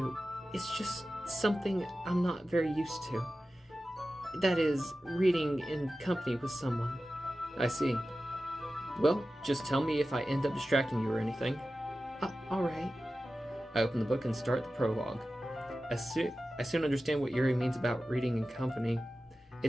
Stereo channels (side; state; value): both; normal; correlation 0.94